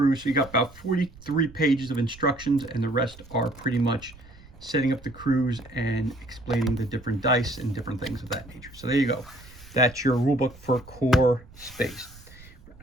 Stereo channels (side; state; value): right; noise; rumble, 21 dB below the sound